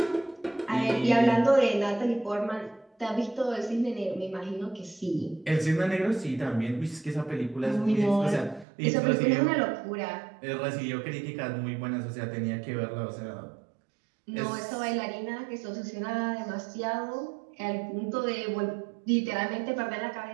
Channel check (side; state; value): left; drops out; at 8.7 s